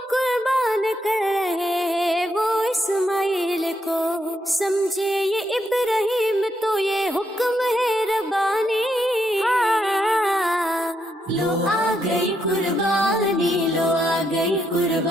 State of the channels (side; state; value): both; normal; correlation 0.79